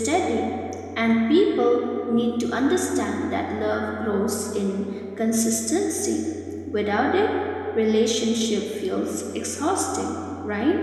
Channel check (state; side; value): identical; both; correlation 1.00